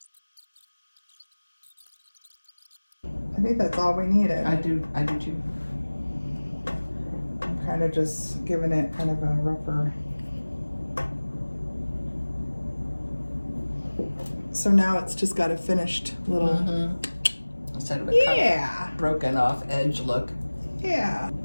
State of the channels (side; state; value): both; inverted; correlation -1.00